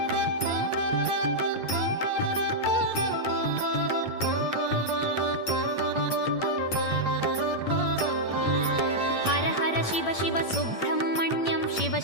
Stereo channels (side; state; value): right; late; 8.7 ms